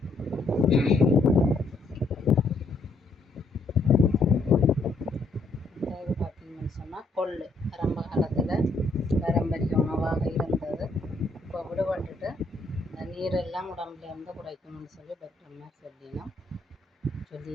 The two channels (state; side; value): quieter; right; 3.2 dB